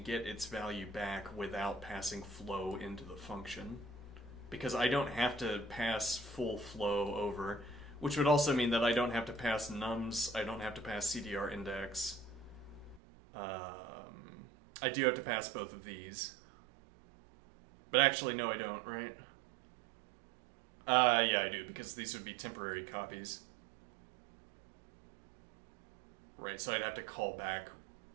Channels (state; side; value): drops out; left; at 13.0 s